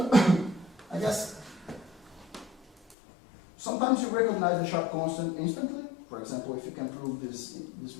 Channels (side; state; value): right; drops out; at 3.0 s